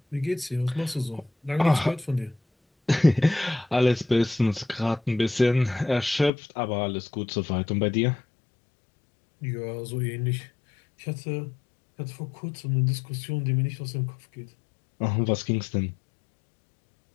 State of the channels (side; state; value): right; drops out; at 6.3 s